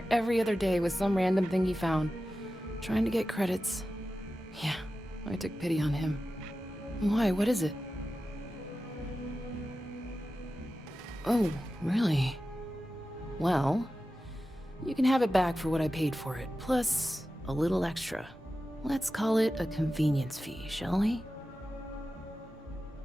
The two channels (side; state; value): both; normal; correlation 0.93